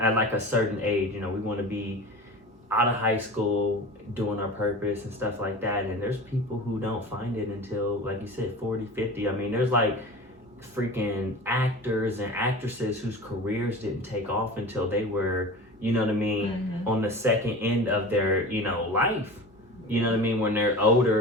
like a certain age, you know, we want to be out of high school doing our purpose and stuff like that, and there's people who don't find it until, like you said, 40, 50. I mean, there's like freaking actors and actresses whose careers didn't take off until they were, you know what I mean, on the second end of their, you know, life. You know what I mean? When they're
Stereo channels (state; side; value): normal; both; correlation 0.34